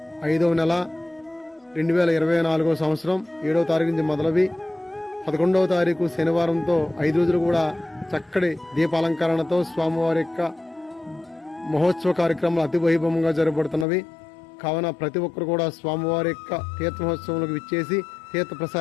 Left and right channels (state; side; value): drops out; right; at 13.9 s